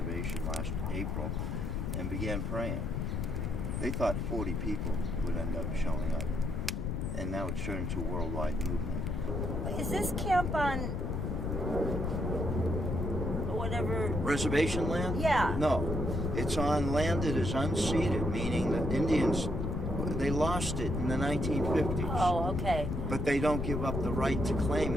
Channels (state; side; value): noise; left; rumble, 1 dB below the sound